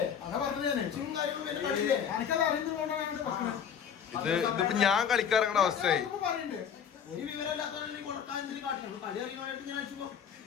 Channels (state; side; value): quieter; right; 7.9 dB